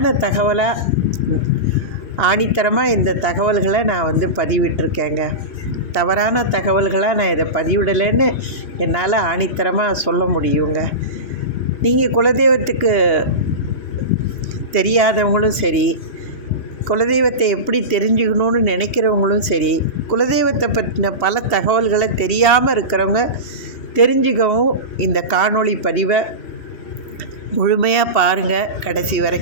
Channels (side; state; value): right; late; 3.1 ms